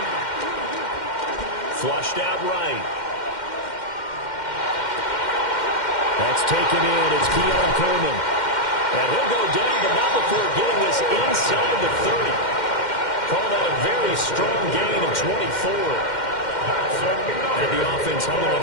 Flushed out right. That's taken in. It's Keon Coleman. And he'll go down, but not before getting this inside the 30. Call that a very strong gain of 24. And the offense humming on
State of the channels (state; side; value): late; right; 2.1 ms